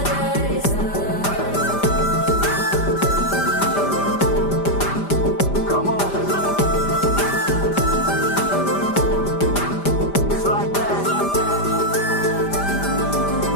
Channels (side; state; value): right; late; 5.1 ms